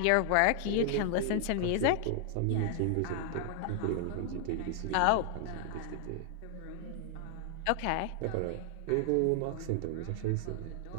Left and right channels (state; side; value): different; both; correlation 0.00